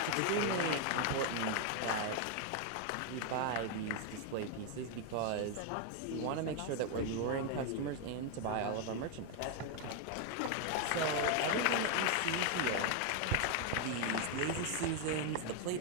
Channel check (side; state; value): both; different; correlation 0.01